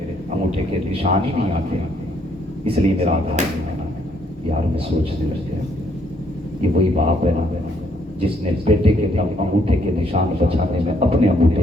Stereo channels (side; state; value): both; normal; correlation 0.69